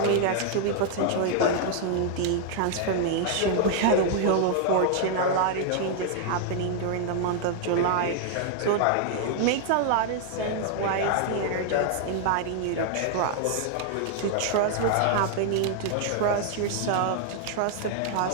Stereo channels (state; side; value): different; both; correlation 0.00